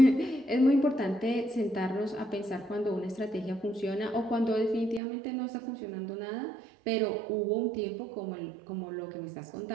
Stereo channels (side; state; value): left; drops out; at 5.0 s